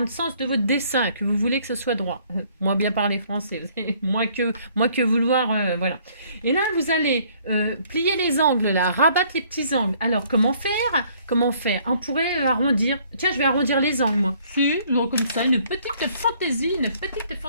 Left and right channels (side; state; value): both; inverted; correlation -0.61